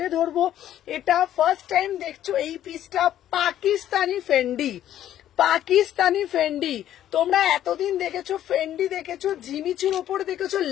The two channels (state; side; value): quieter; right; 11.7 dB